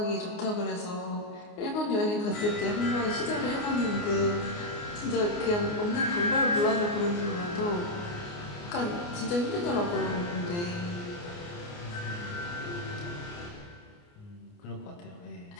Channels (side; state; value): right; late; 29 ms